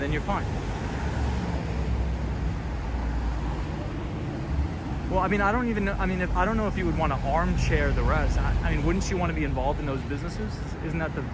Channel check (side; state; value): both; identical; correlation 1.00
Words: you're fine. Well, I mean, I don't even know. I mean, I don't know if you would want to armchair the rest. I mean, wouldn't you want to be involved in those businesses? Isn't that